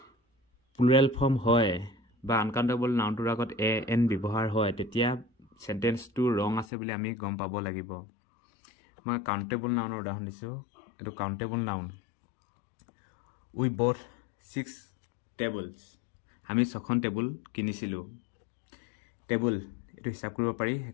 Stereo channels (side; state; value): right; drops out; at 6.7 s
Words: প্লুৰেল ফৰ্ম হয় বা আনকাউণ্টেবল নাউনটোৰ আগত এ এন ব্যৱহাৰ হয় তেতিয়া চেণ্টেন্সটো ৰং আছে বুলি আমি গম পাব লাগিব মই কাউণ্টেবল নাউনৰ উদাহৰণ দিছোঁ এইটো কাউণ্টেবল নাউন উই বথ 6 টেবলছ আমি 6খন টেবুল কিনিছিলোঁ টেবুল এইটো হিচাপ কৰিব পাৰি